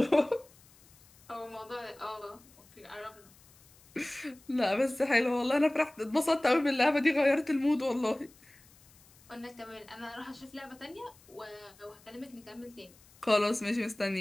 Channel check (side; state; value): left; noise; hiss, 27 dB below the sound